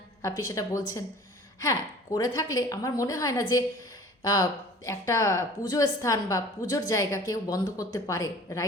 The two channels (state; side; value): normal; both; correlation 0.45